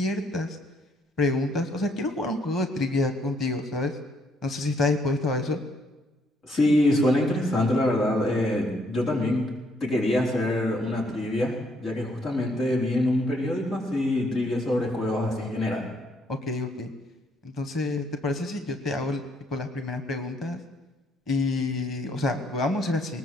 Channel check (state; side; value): normal; both; correlation 0.70